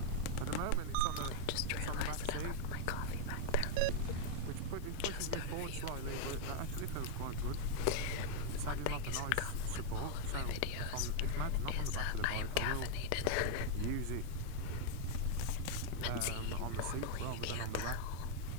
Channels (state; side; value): different; both; correlation 0.00